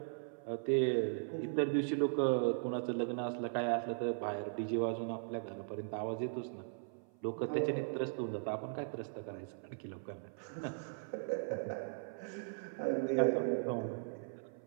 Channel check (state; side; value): silent; left; 52 dB below the other